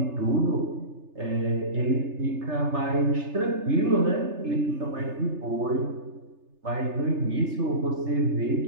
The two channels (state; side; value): late; left; 3.3 ms